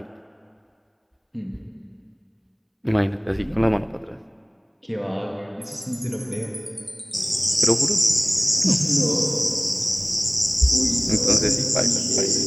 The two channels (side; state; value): both; identical; correlation 1.00